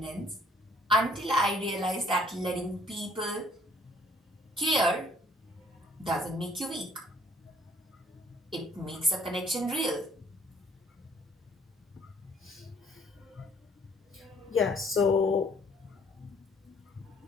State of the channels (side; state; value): both; normal; correlation 0.60